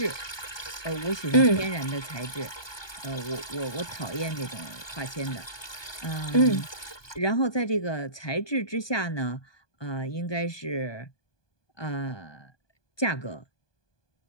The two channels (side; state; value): right; late; 1.2 ms